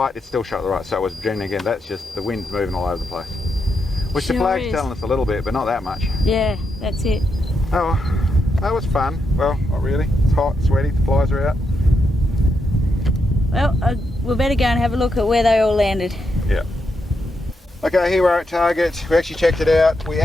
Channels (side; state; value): both; normal; correlation 0.83